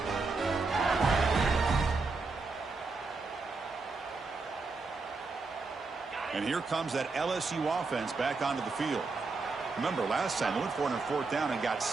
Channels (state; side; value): quieter; left; 4.0 dB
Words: And here comes that LSU offense back onto the field. Remember, last time they went for it on 4th down and got